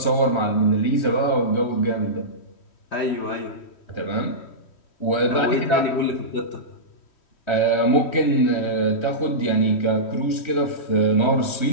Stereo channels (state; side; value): late; right; 3.1 ms